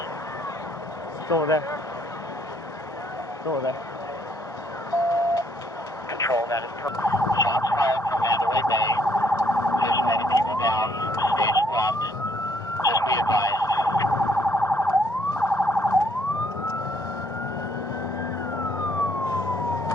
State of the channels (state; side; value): normal; both; correlation 0.68